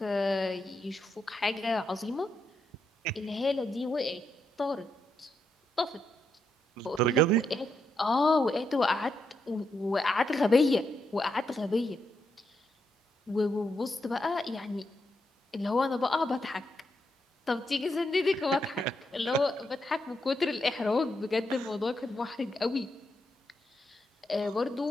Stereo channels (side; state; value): both; normal; correlation 0.81